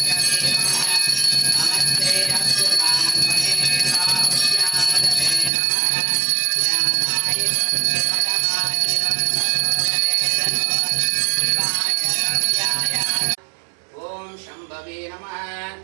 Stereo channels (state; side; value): drops out; left; at 5.5 s